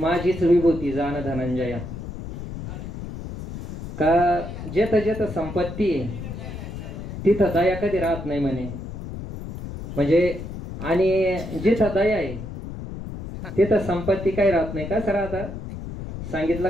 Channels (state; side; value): noise; left; rumble, 9 dB below the sound